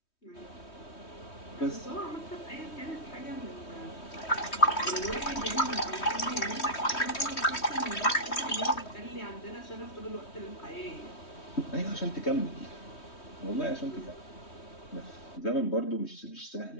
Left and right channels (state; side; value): late; right; 3.2 ms